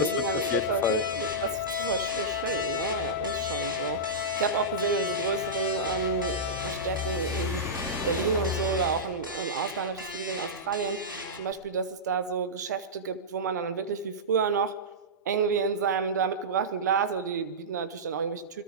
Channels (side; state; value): both; normal; correlation -0.14